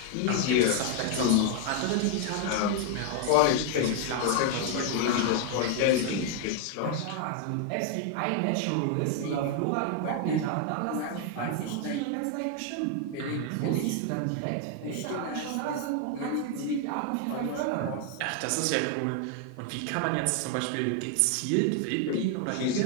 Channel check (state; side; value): different; both; correlation 0.00